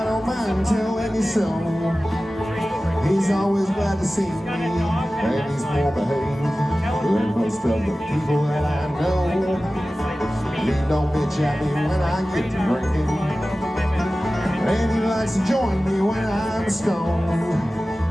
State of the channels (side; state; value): both; normal; correlation 0.96